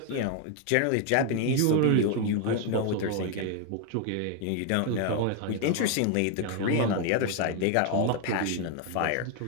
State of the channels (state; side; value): different; both; correlation 0.01